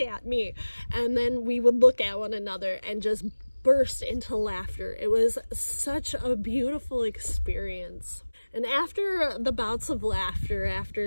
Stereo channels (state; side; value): inverted; both; correlation -1.00